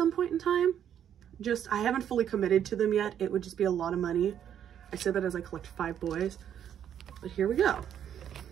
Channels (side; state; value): left; quieter; 9.5 dB